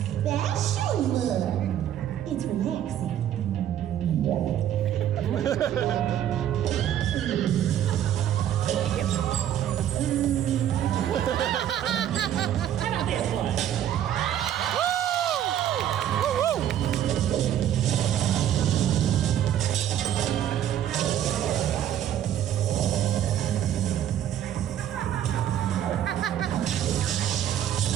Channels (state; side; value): quieter; left; 10.8 dB